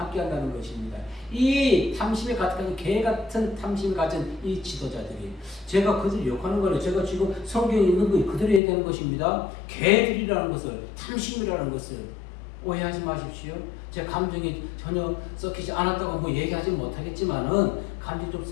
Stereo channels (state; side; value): drops out; right; at 8.6 s